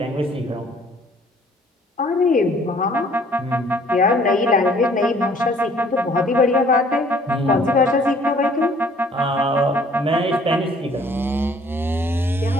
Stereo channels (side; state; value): both; normal; correlation 0.58